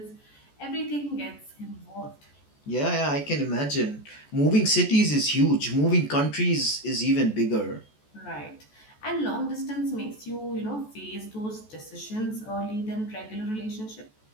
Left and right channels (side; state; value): right; late; 14 ms